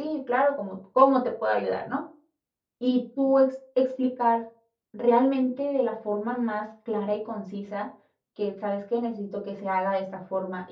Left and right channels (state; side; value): identical; both; correlation 1.00